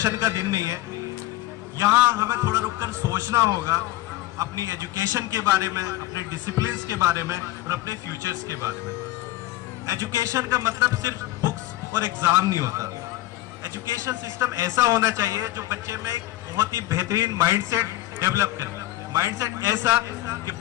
का दिन नहीं है. यहाँ हमें थोड़ा रुककर सोचना होगा अपनी एजुकेशन के बारे में, अपने डिसिप्लिन्स के बारे में और अपने फ्यूचर्स के बारे में. एजुकेशन का मतलब सिर्फ बुक्स और एग्ज़ाम नहीं होता. एजुकेशन सिस्टम ऐसा होना चाहिए जो बच्चे में एक बहुत ही बेहतरीन माइंडसेट डेवलप करे. माइंडसेट ऐसा कि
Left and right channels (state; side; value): quieter; right; 16.1 dB